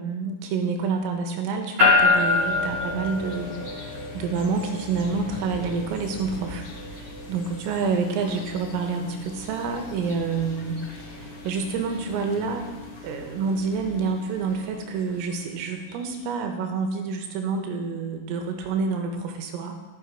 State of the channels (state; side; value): late; left; 17 ms